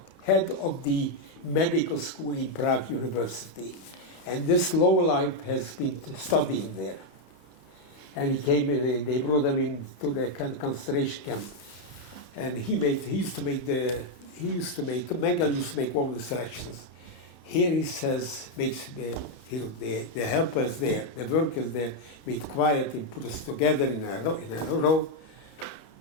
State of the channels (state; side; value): late; right; 31 ms